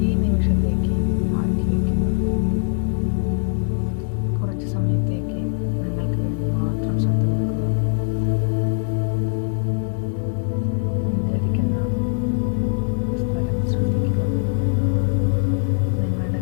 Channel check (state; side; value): silent; right; 57 dB below the other